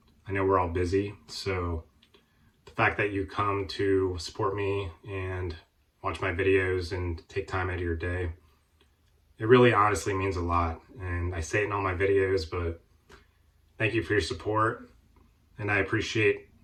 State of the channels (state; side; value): identical; both; correlation 1.00